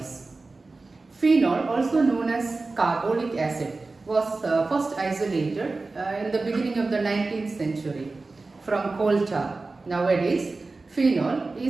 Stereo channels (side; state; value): left; quieter; 3.6 dB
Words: Phenol, also known as carbolic acid, was first isolated in the beginning of the 19th century from coal tar. Nowadays, phenol